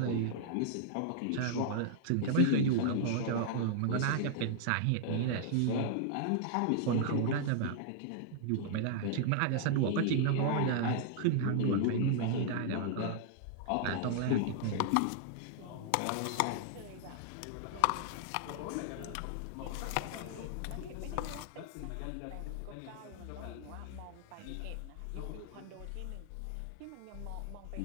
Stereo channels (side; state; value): both; different; correlation -0.01